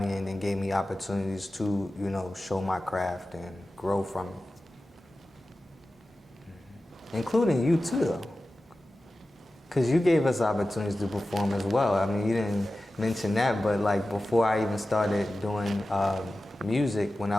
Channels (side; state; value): both; normal; correlation 0.94